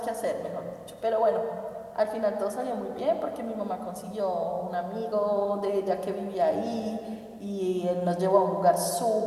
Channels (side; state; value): both; identical; correlation 1.00